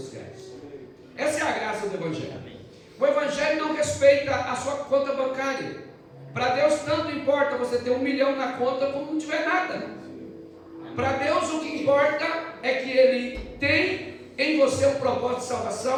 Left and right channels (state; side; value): identical; both; correlation 1.00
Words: Essa é a graça do evangelho. O evangelho não respeita a sua conta bancária. Para Deus tanto importa você ter 1 milhão na conta como não tiver nada. Para Deus o que importa é que Ele tem em você um propósito de